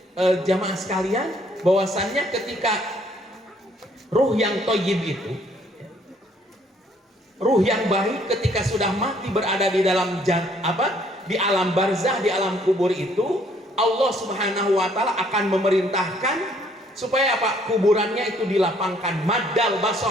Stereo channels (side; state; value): both; normal; correlation 0.64